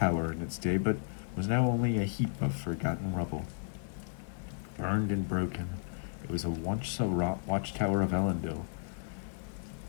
in its day, but was now only a heap of forgotten rubble. Burned and broken, it was a once a watchtower of Elendil.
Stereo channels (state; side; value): silent; right; 55 dB below the other